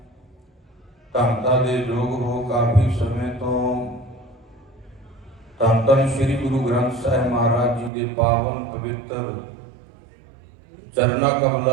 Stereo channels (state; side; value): drops out; left; at 7.9 s